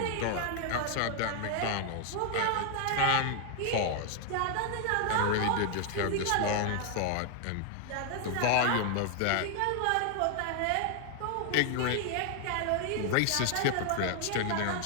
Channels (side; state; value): both; different; correlation 0.00